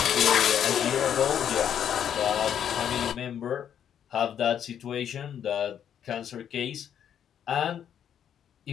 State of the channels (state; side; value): quieter; right; 9.2 dB